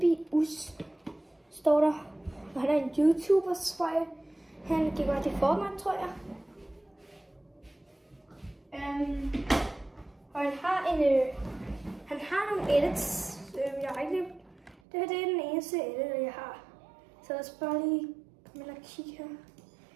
står der. Og han er en YouTuber, tror jeg. Han gik bare til Fortnite, tror jeg. Og han har nogle edits. Jeg har ikke det her det er den eneste edit, jeg har. Så lad os bare lige komme ind og kigge her.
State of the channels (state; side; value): drops out; left; at 14.8 s